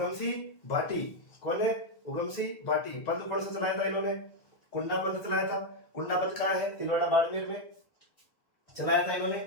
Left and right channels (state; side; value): late; right; 1.6 ms